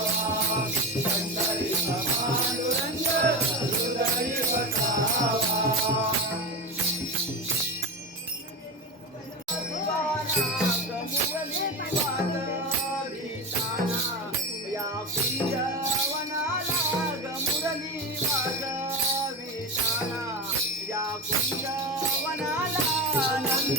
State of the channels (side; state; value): both; normal; correlation 0.19